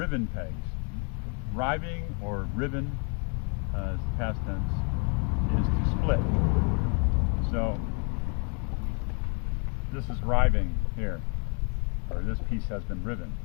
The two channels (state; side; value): quieter; right; 37.4 dB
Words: pegs. Riving or riven, as the past tense, is to split. So this is riving here, or this piece has been riven.